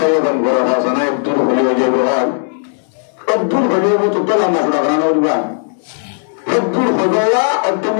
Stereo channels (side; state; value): right; silent; digital silence